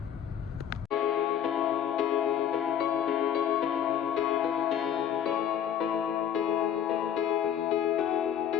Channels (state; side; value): quieter; right; 9.3 dB